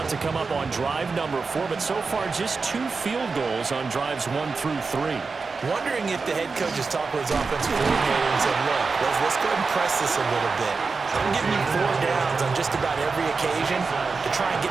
to come up on drive number 4, but so far just 2 field goals on drives 1 through 3. Wondering if the head coach has talked with his offensive coordinator and said, look, let's go ahead and press this a little bit. I'm giving you 4 downs on just about every occasion to try and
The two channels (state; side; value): quieter; left; 4.5 dB